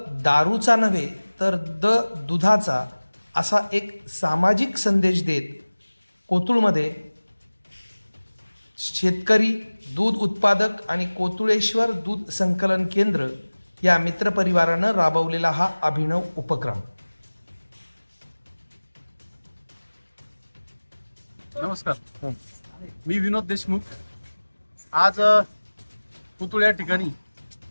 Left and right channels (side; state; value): both; inverted; correlation -1.00